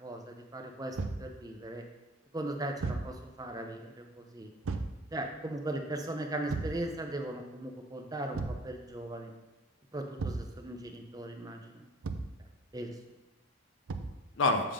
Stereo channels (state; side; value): normal; both; correlation 0.43